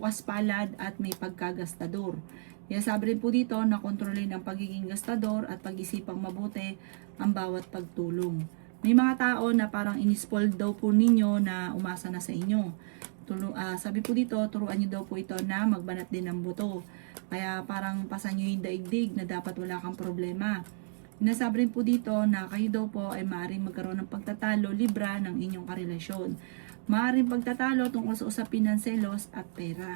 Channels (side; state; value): left; silent; digital silence